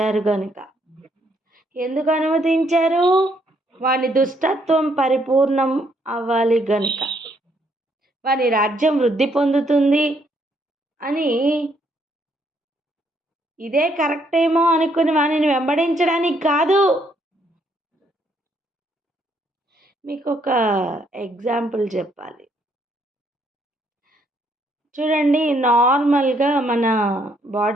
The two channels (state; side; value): normal; both; correlation 0.71